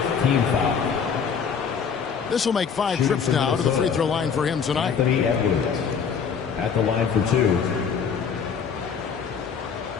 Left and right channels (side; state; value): right; quieter; 6.5 dB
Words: foul. This will make 5 trips now to the free throw line for him tonight. Anthony Edwards at the line for 2.